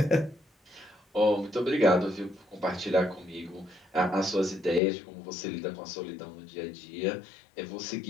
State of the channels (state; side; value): drops out; right; at 4.8 s